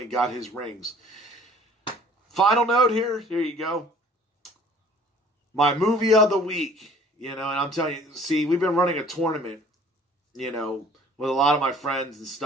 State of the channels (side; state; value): both; normal; correlation 0.53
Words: got his rings. Final note here. Here you go. My movie of the week. And I'm telling you, see, we've been running a tournament, with a lot of my friends and